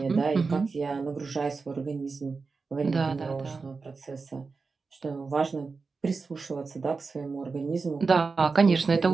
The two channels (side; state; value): left; quieter; 4.4 dB